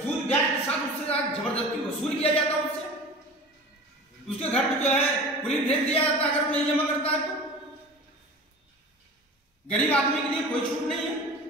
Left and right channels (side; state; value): both; normal; correlation 0.37